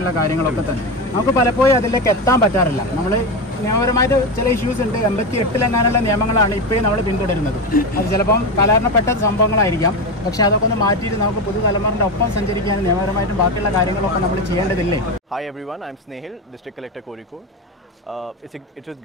കാര്യങ്ങളൊക്കെ തന്നെ. നമുക്ക് പലപ്പോഴും അതിലേക്ക് എത്താൻ പറ്റാറില്ല. നമ്മൾ നിയമപരമായിട്ട് ചില ഇഷ്യൂസ് ഉണ്ട്. 88 നിയമങ്ങളാണ് ഇപ്പോഴും നമ്മൾ പിന്തുടരുന്നത്. അത് ചിലപ്പം കാലഹരണപ്പെട്ട സംഭവങ്ങളായിരിക്കാം. പക്ഷേ അതൊക്കെ ഒന്ന് മാറ്റിയിട്ട് നമുക്ക് പുതുതലമുറയുടെ ഒപ്പം സഞ്ചരിക്കാൻ നിയമപരമായിട്ടും ബാക്കിയുള്ള കാര്യങ്ങളൊക്കെ നമ്മൾ ചെയ്യേണ്ടതില്ലേ? Hi everyone, I'm Snehil, District Collector Kozhikode. It's with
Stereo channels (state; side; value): normal; both; correlation 0.16